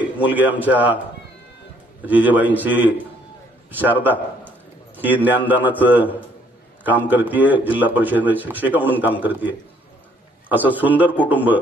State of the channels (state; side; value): normal; both; correlation 0.65